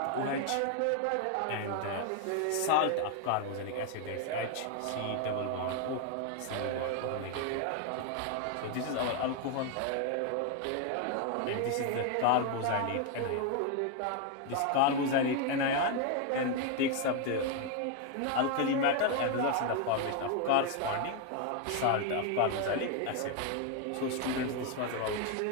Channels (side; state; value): both; different; correlation 0.01